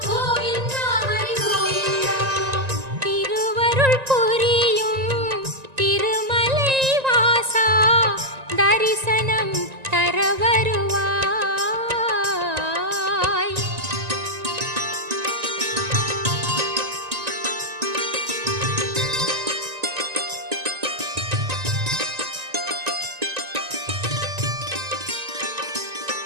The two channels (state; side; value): late; left; 1.9 ms